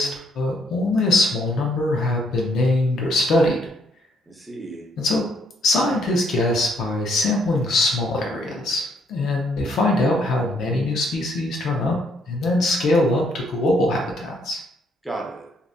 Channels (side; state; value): both; normal; correlation 0.70